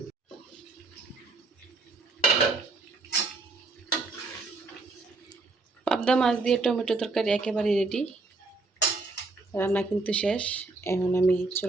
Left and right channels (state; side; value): quieter; left; 3.6 dB